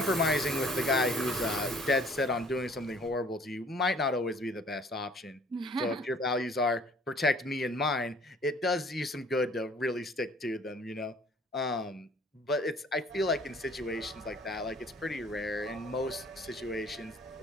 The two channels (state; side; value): normal; both; correlation 0.54